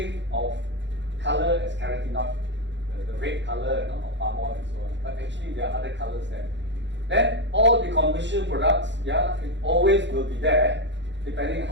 of color as carotenoid, the red color of palm oil and so on. But actually, there are other colors there. Then all the commercial products, yeah, it always will be there, depending on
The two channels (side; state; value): left; late; 0.52 ms